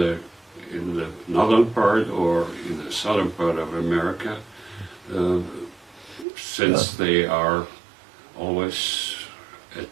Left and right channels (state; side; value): drops out; left; at 6.2 s